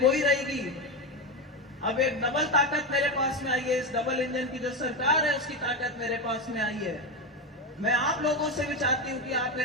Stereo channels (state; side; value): normal; both; correlation 0.14